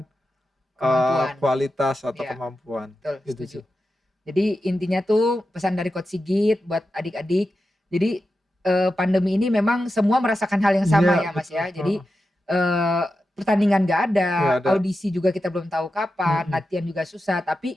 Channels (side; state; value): both; normal; correlation 0.91